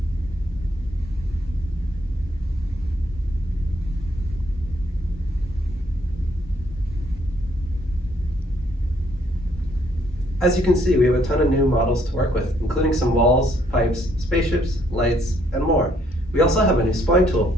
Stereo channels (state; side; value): normal; both; correlation 0.68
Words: As you can see, we have a ton of new models to work with, including some walls, pipes, spaceships, lights, and more. We also have a new spline tool